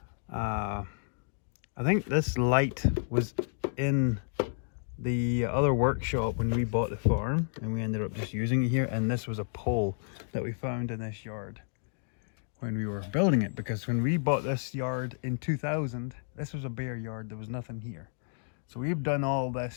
think this light was in the other workshop when we bought the farm, and we ended up just using it here. And this was a pole that we found in this yard when we were building it, because when we bought this yard in 2000, this was a bare yard, there was nothing here. So we've done all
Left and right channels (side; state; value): right; silent; digital silence